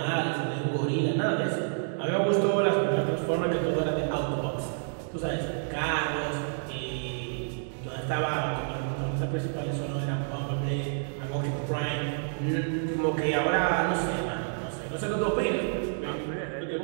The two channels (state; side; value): silent; left; digital silence